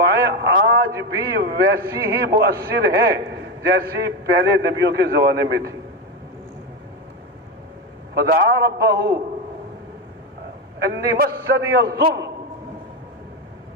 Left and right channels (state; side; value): normal; both; correlation 0.14